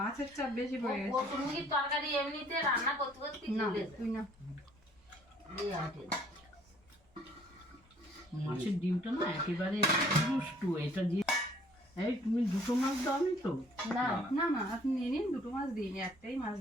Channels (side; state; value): both; normal; correlation 0.59